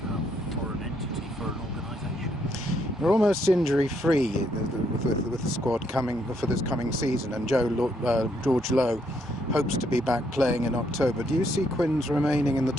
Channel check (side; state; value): both; normal; correlation 0.73